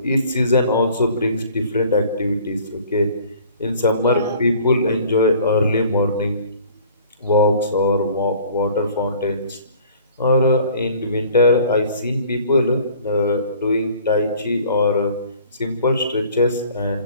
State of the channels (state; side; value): inverted; both; correlation -0.52